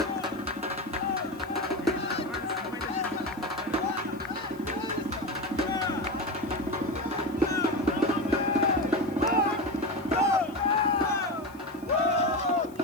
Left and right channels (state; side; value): noise; left; hiss, 26 dB below the sound